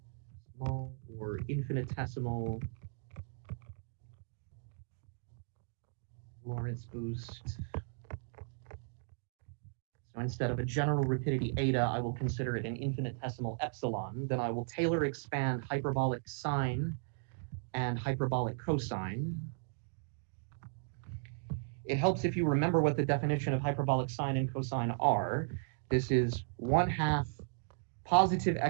small or infinitesimal Lorentz boost, so instead of a general rapidity eta, I will consider it an infinitesimal epsilon. Then I will Taylor expand hyperbolic sine and hyperbolic cosine. It helps if you remember what the definition of hyperbolic sine and cosine are. This is 1/2 positive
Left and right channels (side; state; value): left; silent; digital silence